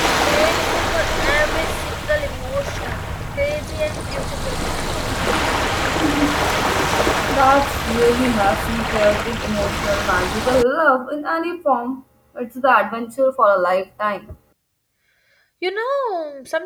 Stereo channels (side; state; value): both; identical; correlation 1.00